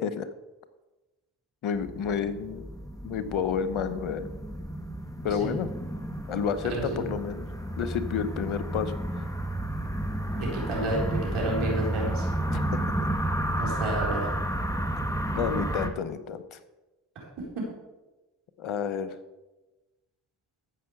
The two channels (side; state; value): both; normal; correlation 0.44